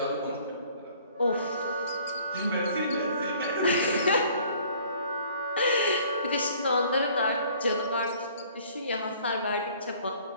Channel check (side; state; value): both; inverted; correlation -0.55